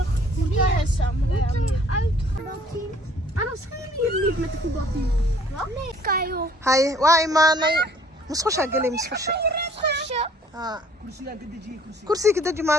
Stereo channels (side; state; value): both; normal; correlation 0.58